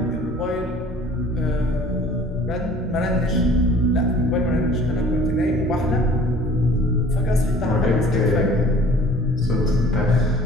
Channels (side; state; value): both; normal; correlation 0.50